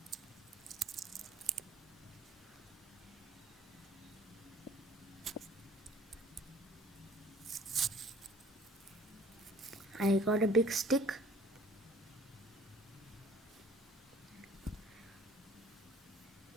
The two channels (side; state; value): both; normal; correlation 0.53